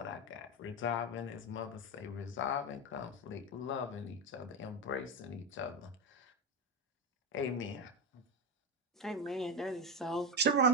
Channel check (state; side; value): normal; both; correlation 0.13